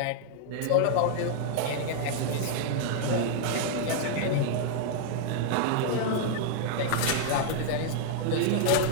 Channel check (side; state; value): both; different; correlation -0.01